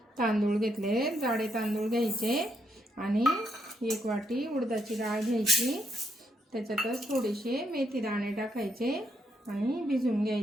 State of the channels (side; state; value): both; normal; correlation 0.77